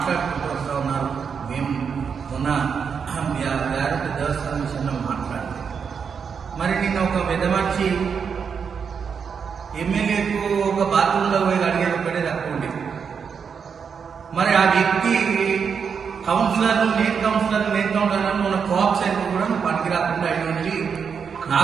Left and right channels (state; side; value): quieter; left; 6.4 dB